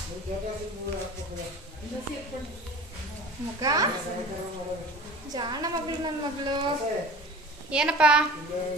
ಮುಖ ಜಾಣ ಮಗಳು, ನನ್ನ ಮಗಳು. ಏನಪ್ಪ?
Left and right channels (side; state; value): both; normal; correlation 0.39